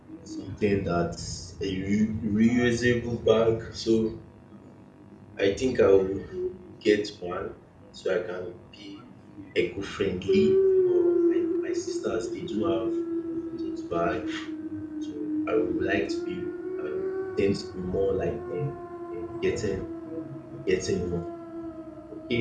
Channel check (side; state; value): both; identical; correlation 1.00